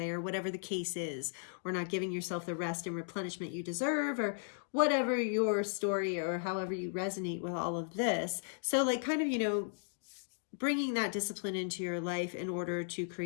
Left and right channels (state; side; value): silent; right; digital silence